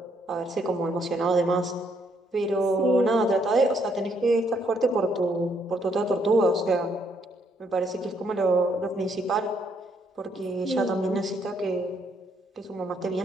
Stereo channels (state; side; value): normal; both; correlation 0.72